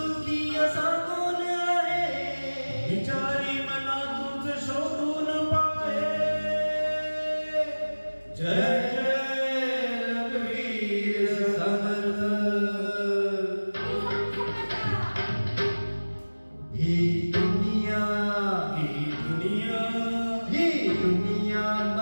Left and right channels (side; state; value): both; inverted; correlation -1.00